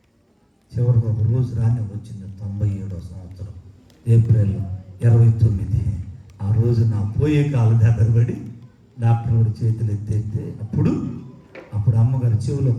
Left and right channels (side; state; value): both; identical; correlation 1.00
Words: చివరికి ఒక రోజు రాని వచ్చింది 97వ సంవత్సరం ఏప్రిల్ 29. ఆ రోజు నా పోయే కాలు దగ్గర పడి డాక్టర్ వాడి చేతులు ఎత్తేస్తే అప్పుడు అమ్మగారు చెవులో